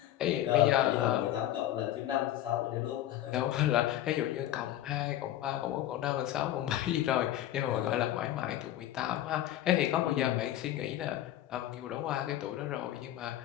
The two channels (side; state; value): right; quieter; 13.1 dB